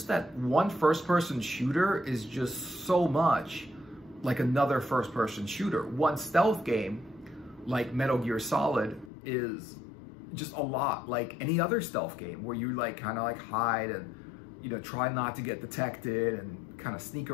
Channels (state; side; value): drops out; right; at 9.1 s